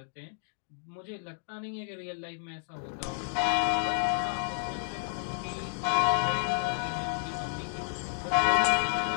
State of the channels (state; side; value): silent; right; digital silence